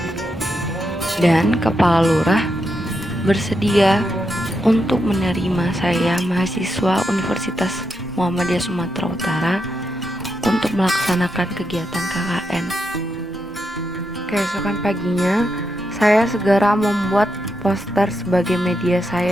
dan kepala lurah bersedia untuk menerima saya, mahasiswa Universitas Muhammadiyah Sumatera Utara, untuk melaksanakan kegiatan KKN. Keesokan paginya, saya segera membuat poster sebagai media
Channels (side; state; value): both; normal; correlation 0.84